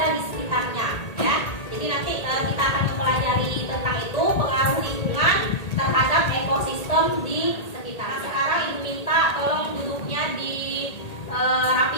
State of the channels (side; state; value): right; late; 1.8 ms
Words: di sekitarnya ya. Jadi nanti kita akan mempelajari tentang itu, pengaruh lingkungan terhadap ekosistem di sekitar. Nah, sekarang Ibu minta tolong duduknya dirapikan